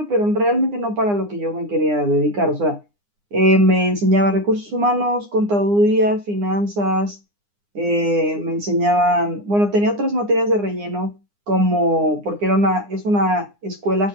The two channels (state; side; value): late; left; 9.8 ms